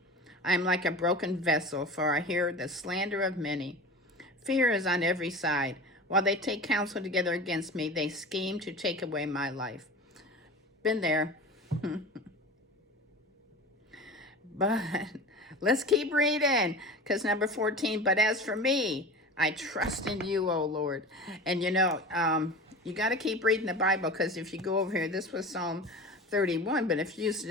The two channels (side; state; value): both; normal; correlation 0.33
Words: I am like a broken vessel, for I hear the slander of many. Fear is on every side. While they take counsel together against me, they scheme to take away my life. Been there. But let's keep reading, because number 14, but as for me, I trust in you, O Lord. And you got to keep reading the Bible, because if you go over here, this was Psalm 31, but if you